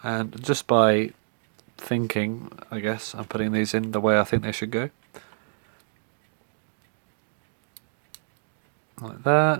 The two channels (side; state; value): left; silent; digital silence